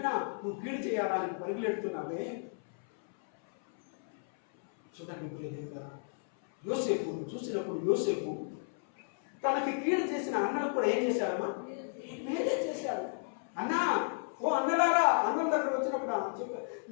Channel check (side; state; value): right; silent; 56 dB below the other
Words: నువ్వు కీడు చేయాలని పరుగులెడుతున్నావే. చూడండి, యోసేపు చూసినప్పుడు యోసేపు తనకి కీడు చేసిన అన్నలకు కూడా ఏం చేశాడమ్మా? మేలే చేశాడు. అన్నా, ఓ అన్నలారా, అన్నం దగ్గర వచ్చినప్పుడు చెప్పారు,